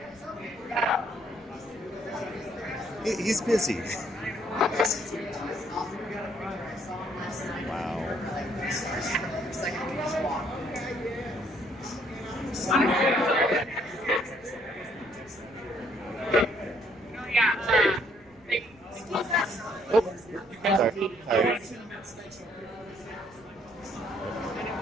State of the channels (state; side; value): noise; right; rumble, 28 dB below the sound